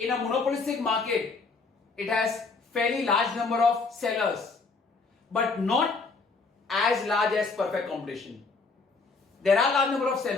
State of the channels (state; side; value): quieter; right; 4.2 dB